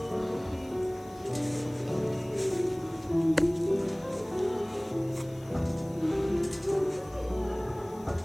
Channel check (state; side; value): noise; left; hiss, 26 dB below the sound